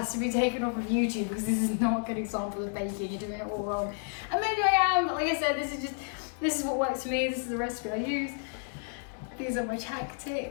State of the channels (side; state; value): right; silent; 57 dB below the other